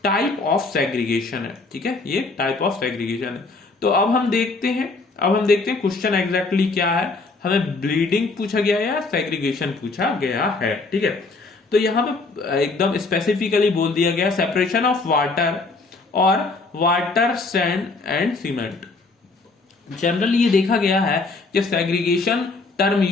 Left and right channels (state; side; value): quieter; right; 3.7 dB